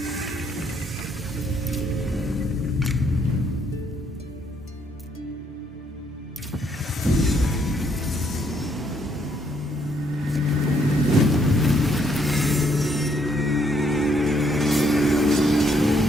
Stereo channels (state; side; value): normal; both; correlation 0.71